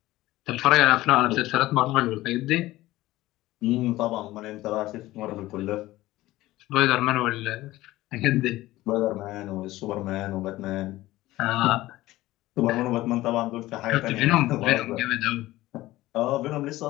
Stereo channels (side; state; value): right; quieter; 17.1 dB